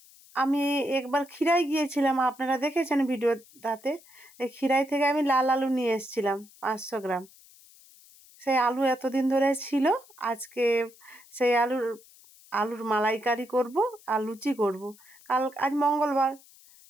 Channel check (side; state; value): left; noise; hiss, 25 dB below the sound